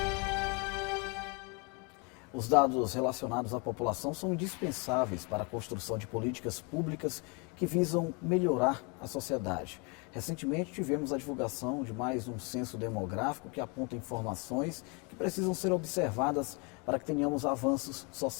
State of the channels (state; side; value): quieter; right; 32.0 dB